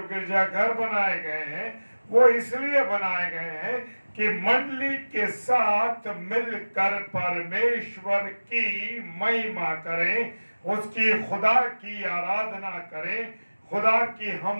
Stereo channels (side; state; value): both; inverted; correlation -1.00